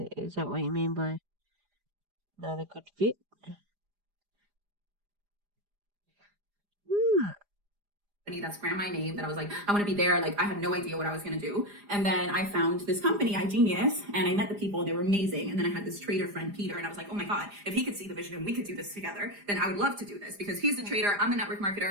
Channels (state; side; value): late; left; 4.9 ms